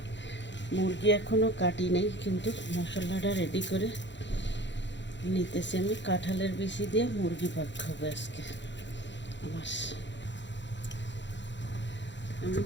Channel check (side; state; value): right; late; 0.52 ms